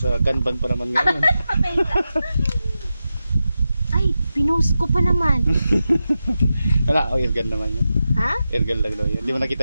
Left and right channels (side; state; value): both; inverted; correlation -0.91